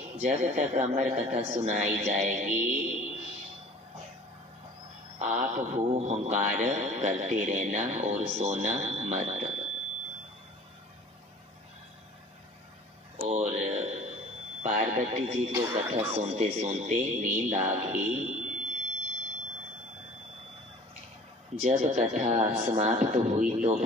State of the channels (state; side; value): normal; both; correlation 0.48